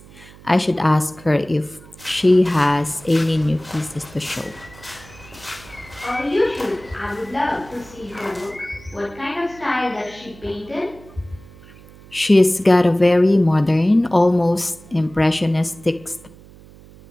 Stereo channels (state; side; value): noise; right; hum, 22 dB below the sound